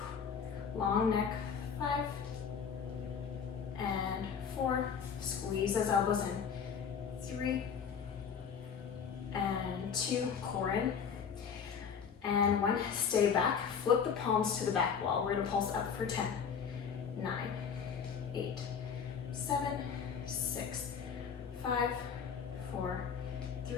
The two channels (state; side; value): quieter; right; 6.8 dB